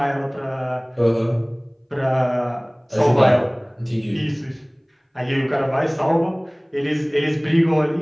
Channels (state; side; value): identical; both; correlation 1.00